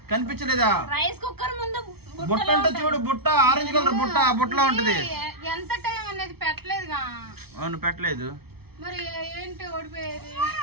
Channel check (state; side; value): late; left; 0.96 ms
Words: కనిపించలేదా? రైస్ కుక్కర్ ముందు బుట్ట అంటే చూడు, బుట్ట ఆరెంజ్ కలర్ బుట్ట, ఆ బుట్టలో ఉంటది. ఎంత టైం అనేది పెట్టలేదుగా. అవును పెట్టలేదు. మరి ఏంటి ఓడిపోయేది?